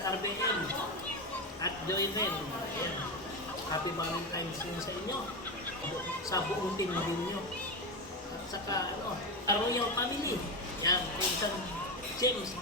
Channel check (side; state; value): both; normal; correlation 0.16